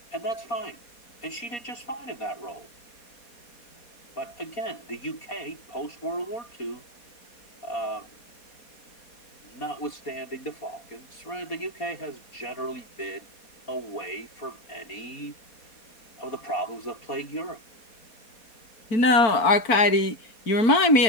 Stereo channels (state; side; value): late; right; 4.2 ms